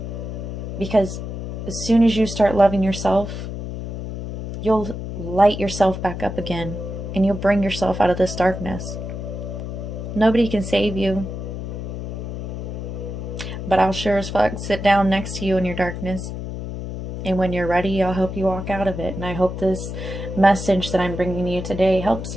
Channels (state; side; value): noise; left; hum, 6 dB below the sound